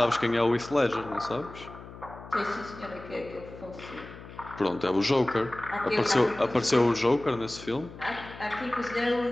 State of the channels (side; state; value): left; noise; hum, 16 dB below the sound